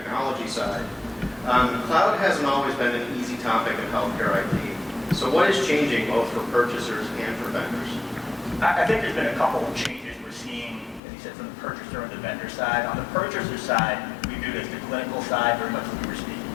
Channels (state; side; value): drops out; right; at 11.0 s